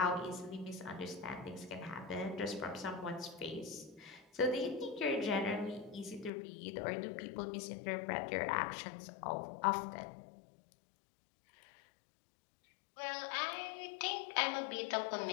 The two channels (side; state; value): right; drops out; at 6.3 s